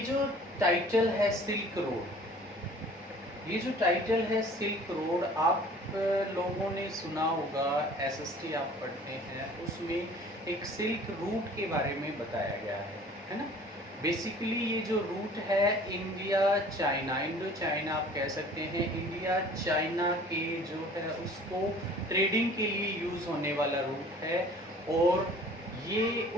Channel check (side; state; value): both; normal; correlation 0.49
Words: जो टाइटल है सिल्क रोड, ये जो टाइटल है सिल्क रोड, आप लोगों ने सुना होगा, एसएसटी आप पढ़ते हैं, उसमें एक सिल्क रूट के बारे में बताया गया है ना। बेसिकली ये जो रूट है इंडिया चाइना, इंडो चाइना आप कह सकते हैं, इंडिया चाइना के जो है उसको ट्रेडिंग के लिए यूज़ होने वाला रूट है। और ये